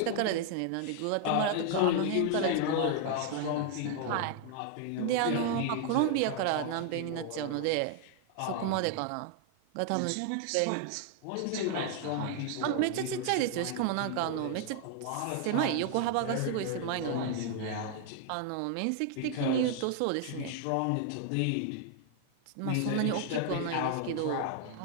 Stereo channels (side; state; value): both; different; correlation 0.00